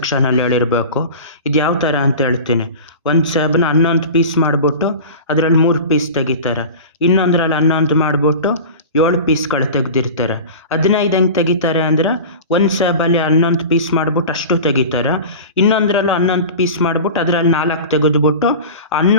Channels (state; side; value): inverted; both; correlation -0.34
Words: ಹೇಳಿರಬೇಕು. ಇದು ಯಾವ ಥರ ಅಂತ ಹೇಳ್ತೀನಿ. ಒಂದು ಸೇಬನ್ನ 11 ಪೀಸ್ ಮಾಡಿಬಿಟ್ಟು ಅದರಲ್ಲಿ 3 ಪೀಸ್ ತೆಗಿತಾರೆ. ಇನ್ನೊಂದರಲ್ಲಿ 11 ಮಾಡಿಬಿಟ್ಟು 7 ಪೀಸ್ಗಳು ತೆಗೆದಿರ್ತಾರೆ. 15 ಹೆಂಗೆ ತೆಗಿತಾರೆ ಅಂದರೆ ಒಂದು ಸೇಬಲ್ಲಿ 11 ಪೀಸ್ ಮಾಡಿಬಿಟ್ಟು ಅಷ್ಟು ತೆಗಿತಾರೆ. ಇನ್ನೊಂದರಲ್ಲೂ 11 ಪೀಸ್ ಮಾಡಿಬಿಟ್ಟು ಅದರಲ್ಲಿ 4 ತೆಗೆದುಬಿಟ್ಟು